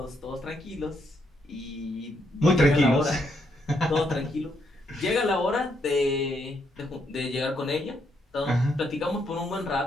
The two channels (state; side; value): normal; both; correlation 0.76